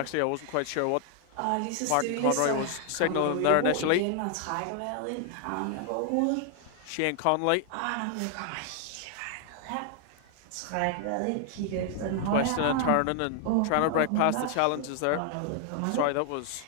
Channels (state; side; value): different; both; correlation 0.00